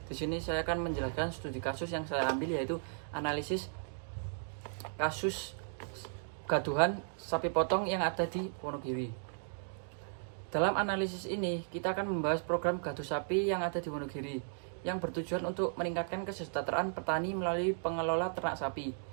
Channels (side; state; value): left; silent; digital silence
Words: Di sini saya akan menjelaskan studi kasus yang saya ambil, yaitu analisis kasus gaduhan sapi potong yang ada di Wonogiri. Dalam analisis ini kita akan membahas program gaduh sapi yang ada di Wonogiri yang bertujuan untuk meningkatkan kesejahteraan petani melalui pengelola ternak sapi.